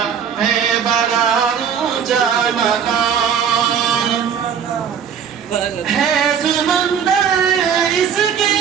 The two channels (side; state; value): left; quieter; 7.6 dB